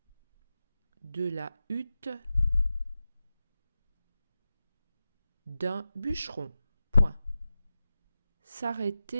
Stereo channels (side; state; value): both; inverted; correlation -0.93